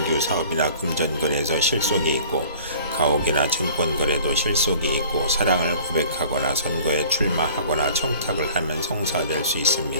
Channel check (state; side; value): inverted; both; correlation -0.48